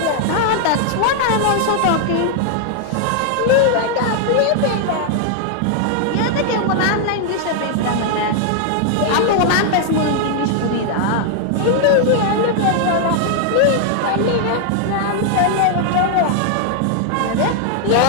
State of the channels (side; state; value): both; different; correlation 0.00